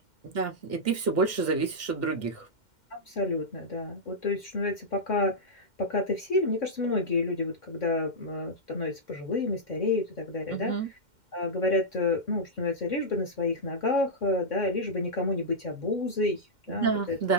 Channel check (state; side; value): late; right; 2.1 ms